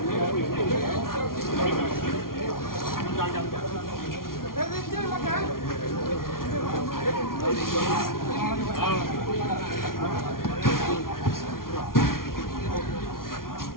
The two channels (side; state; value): right; late; 0.92 ms